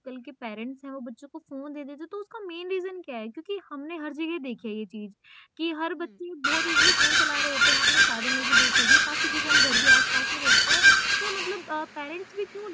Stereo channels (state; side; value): identical; both; correlation 1.00